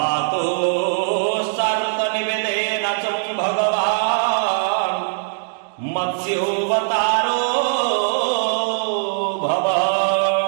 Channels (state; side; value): silent; left; digital silence